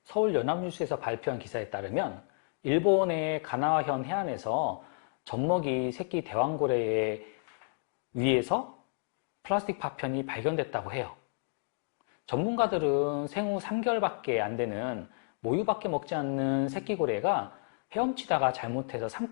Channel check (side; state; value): right; silent; 57 dB below the other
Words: 서울 연합뉴스에서 발표한 기사에 따르면 일본의 가나와현 해안에서 젖먹이 새끼 대왕고래에 의해서 플라스틱 파편이 발견됐다고 해요. 전문가들은 생후 3개월밖에 안 되는 모유밖에 먹지 않는 새끼고래가 헤엄치다가 잘못해서